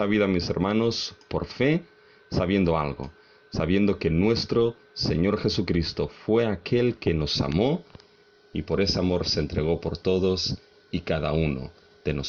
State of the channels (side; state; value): both; identical; correlation 1.00